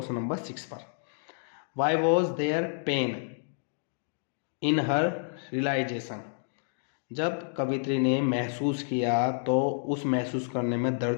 नंबर 6 पर। Why was there pain in her realisation, जब कवित्री ने महसूस किया तो उस महसूस करने में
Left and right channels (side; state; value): right; silent; digital silence